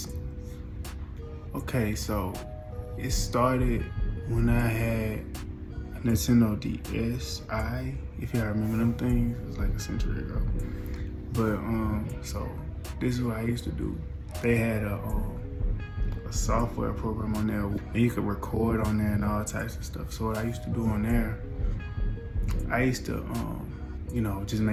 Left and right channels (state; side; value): identical; both; correlation 1.00